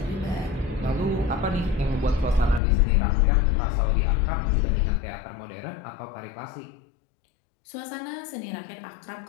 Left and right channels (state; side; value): drops out; right; at 2.6 s